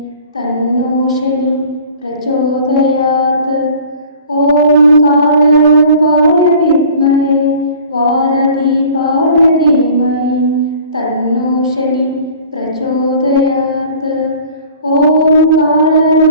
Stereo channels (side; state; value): both; inverted; correlation -0.47